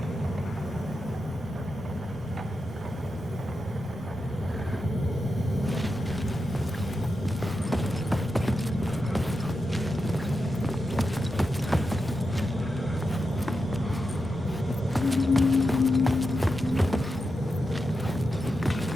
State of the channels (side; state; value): both; normal; correlation 0.88